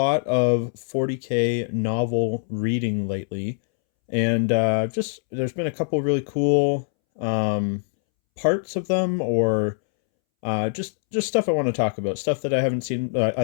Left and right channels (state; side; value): silent; right; 63 dB below the other